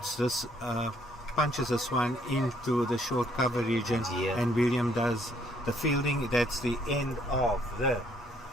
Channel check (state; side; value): normal; both; correlation 0.67